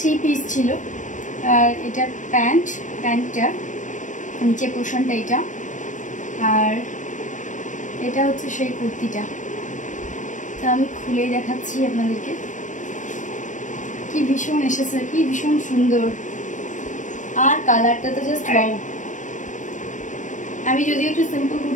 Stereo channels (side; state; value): right; late; 0.37 ms